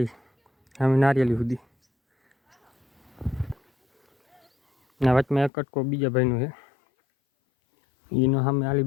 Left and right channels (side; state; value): right; drops out; at 5.5 s